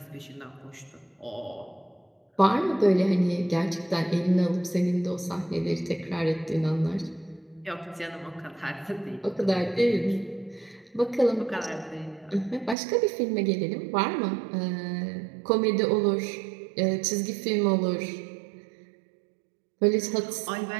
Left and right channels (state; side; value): drops out; left; at 12.8 s